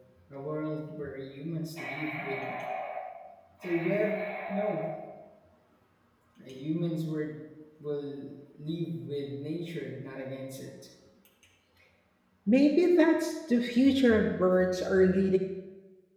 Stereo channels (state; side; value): identical; both; correlation 1.00